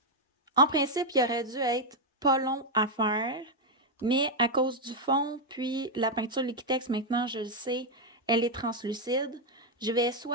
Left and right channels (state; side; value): normal; both; correlation 0.00